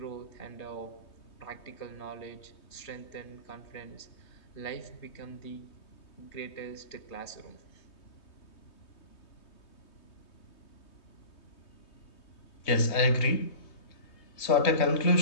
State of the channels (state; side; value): late; right; 3.2 ms